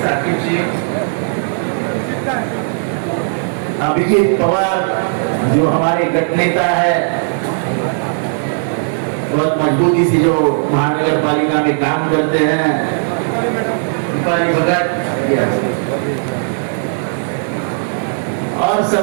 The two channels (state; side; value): silent; left; digital silence